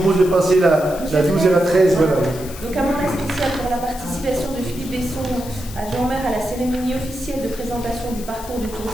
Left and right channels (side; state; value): left; noise; hiss, 15 dB below the sound